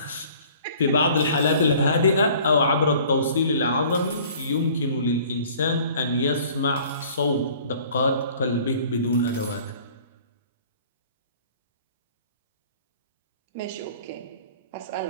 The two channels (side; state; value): both; inverted; correlation -0.51